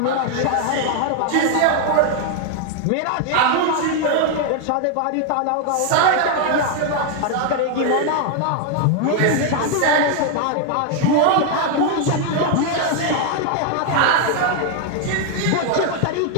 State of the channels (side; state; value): both; different; correlation 0.00